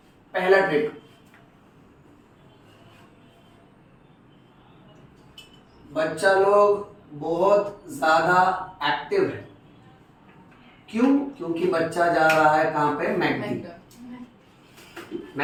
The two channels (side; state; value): both; identical; correlation 1.00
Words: पहला ट्रिक, बच्चा लोग बहुत ज्यादा एक्टिव है, क्यों? क्योंकि बच्चा जा रहा है कहां पे? मैकडी।